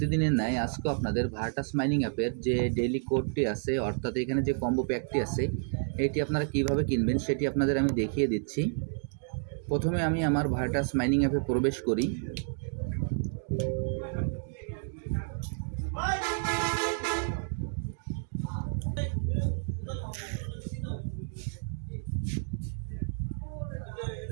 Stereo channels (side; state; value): left; silent; digital silence